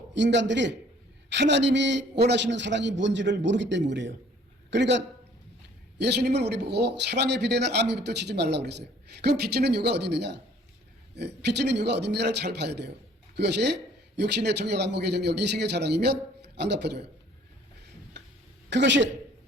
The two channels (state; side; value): normal; both; correlation 0.56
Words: 인간들이 하나님이 원하시는 사랑이 뭔지를 모르기 때문에 그래요. 그러니까 예수님은 우리 보고 사랑에 비대는 아미부터 치지 말라고 그랬어요. 그럼 빚지는 이유가 어디 있느냐? 빚지는 이유가 어디 있느냐를 잘 봐야 돼요. 그것이 육신의 정욕, 안목의 정욕, 이생의 자랑이면 안 갚아줘요. 그것이